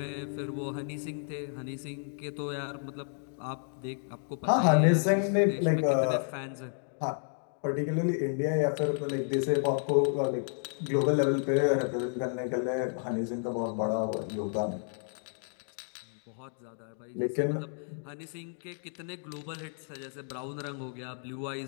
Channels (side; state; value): right; silent; 57 dB below the other